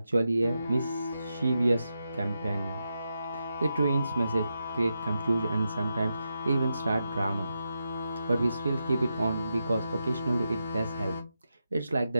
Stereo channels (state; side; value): inverted; both; correlation -0.87